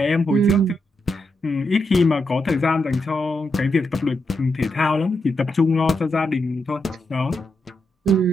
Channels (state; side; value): normal; both; correlation 0.83